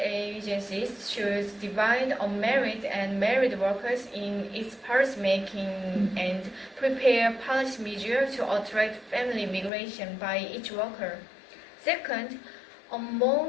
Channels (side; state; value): right; drops out; at 9.7 s